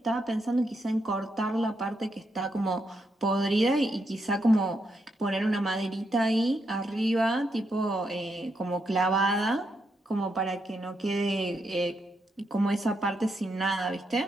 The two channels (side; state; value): both; normal; correlation 0.81